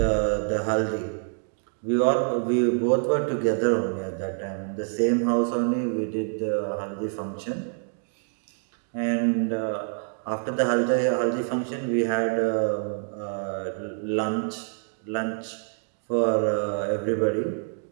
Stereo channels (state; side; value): silent; left; 61 dB below the other